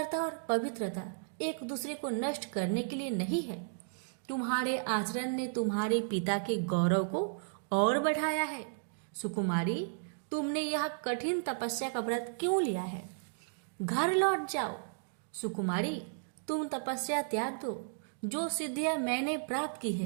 और पवित्रता एक दूसरे को नष्ट करने के लिए नहीं है। तुम्हारे आचरण ने तुम्हारे पिता के गौरव को और बढ़ाया है। सुकुमारी, तुमने यह कठिन तपस्या का व्रत क्यों लिया है? घर लौट जाओ। सुकुमारी, तुम तपस्या त्याग दो। जो सिद्धियां मैंने प्राप्त की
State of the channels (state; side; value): silent; left; digital silence